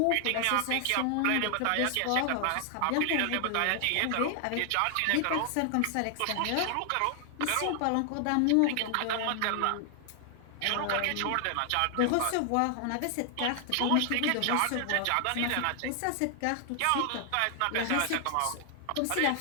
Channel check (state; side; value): different; both; correlation 0.00